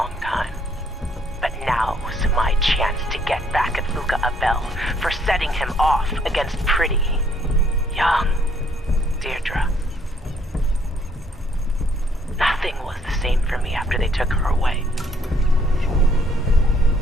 time. But now's my chance to get back at Luca Abel for setting him off against pretty, young Deirdre. Nothing was the same for me after they took her away.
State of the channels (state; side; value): normal; both; correlation 0.67